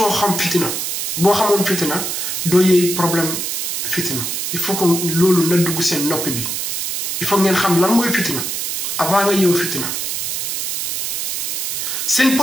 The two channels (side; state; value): right; noise; hiss, 2 dB below the sound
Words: xam fitina boo xamoon fitina doo yee problème fitina il faut que loolu na dugg seen noppi bi il faut ngeen xam lan mooy fitina avant nga yeewu fitina seen